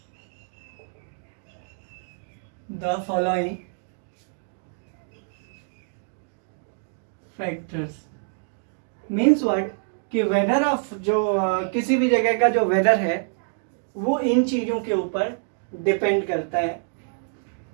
The following factors means what कि वेदर ऑफ जो किसी भी जगह का जो वेदर है वो इन चीजों के ऊपर डिपेंड करता है.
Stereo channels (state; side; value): silent; left; digital silence